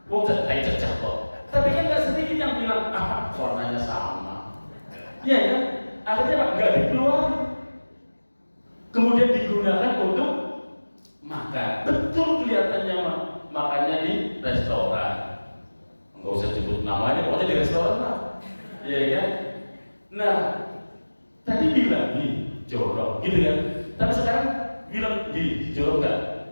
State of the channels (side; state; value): both; inverted; correlation -1.00